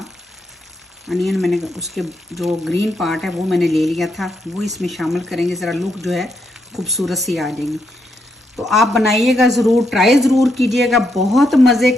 अनियन मैंने उसके जो ग्रीन पार्ट है वो मैंने ले लिया था, वो इसमें शामिल करेंगे। ज़रा लुक जो है खूबसूरत सी आ जाएगी। तो आप बनाइएगा ज़रूर, ट्राई ज़रूर कीजिएगा, बहुत मज़े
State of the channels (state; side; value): normal; both; correlation 0.79